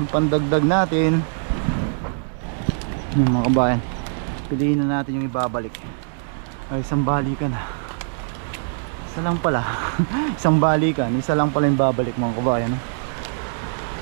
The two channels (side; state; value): left; silent; 64 dB below the other